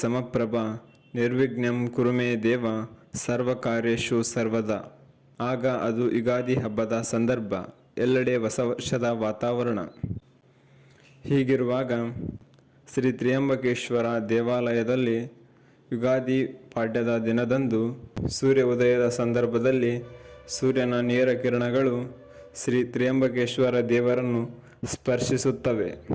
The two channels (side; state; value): both; identical; correlation 1.00